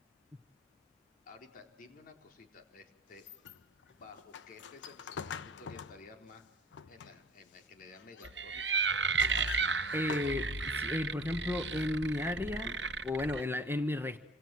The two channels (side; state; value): both; normal; correlation 0.45